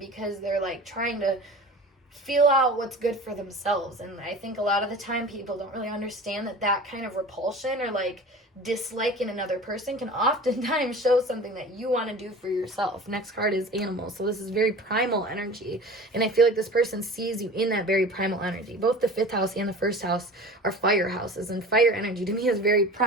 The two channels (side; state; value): both; normal; correlation 0.38